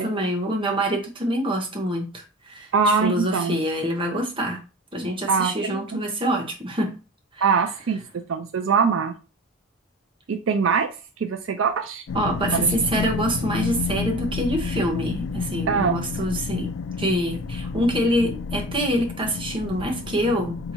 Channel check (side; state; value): both; normal; correlation 0.34